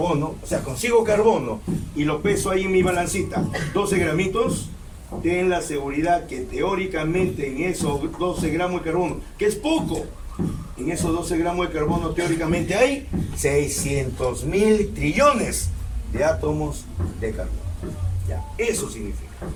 o sea, consigo carbono y lo peso ahí en mi balancita, 12 gramitos, ten la seguridad que teóricamente en esos 12 gramos de carbono, que es poco, en esos 12 gramos de carbono teóricamente hay 600.000 trillones de átomos de carbono. Ya, eso significa.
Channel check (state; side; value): identical; both; correlation 1.00